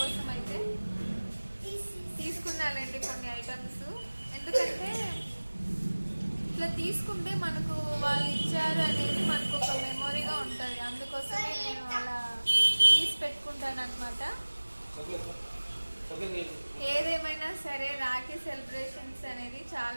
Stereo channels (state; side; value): inverted; both; correlation -1.00